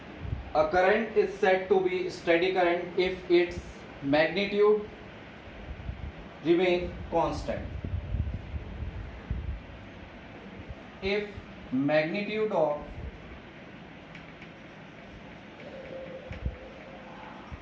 a current is said to be steady current if its magnitude remain constant. If magnitude of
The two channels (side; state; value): both; identical; correlation 1.00